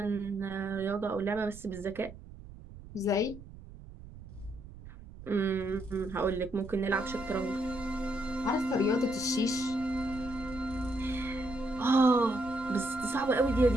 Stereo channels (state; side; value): noise; right; rumble, 16 dB below the sound